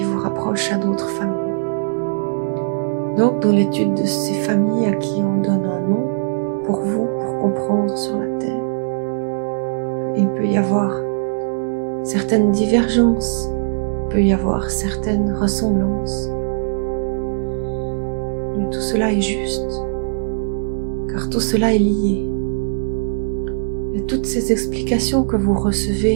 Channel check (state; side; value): silent; left; digital silence